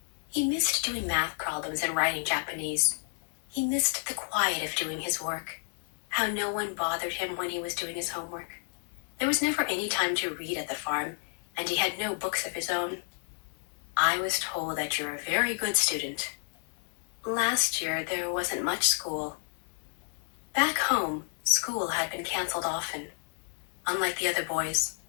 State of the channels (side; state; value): right; silent; 57 dB below the other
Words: He missed doing math problems and writing Japanese. He missed the quiet of doing his work, how no one bothered him when he was doing his homework. There was never any time to read at the farm, and he had no books of his own. I was told that you're a very good student. Last year, there wasn't much school. Back home, school had been canceled often. Unlike the other boys,